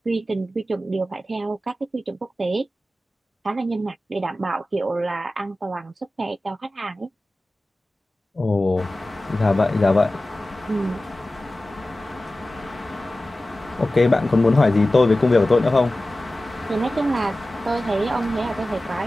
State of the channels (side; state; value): both; normal; correlation 0.96